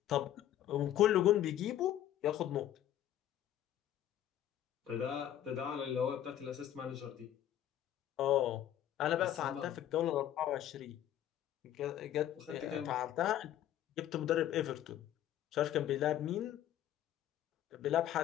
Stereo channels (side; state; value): right; quieter; 11.7 dB